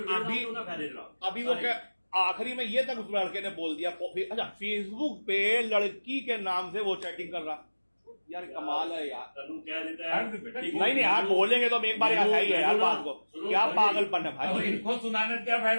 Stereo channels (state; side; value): inverted; both; correlation -1.00